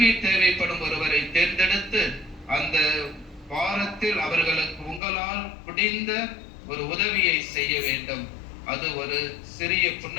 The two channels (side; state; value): right; drops out; at 5.0 s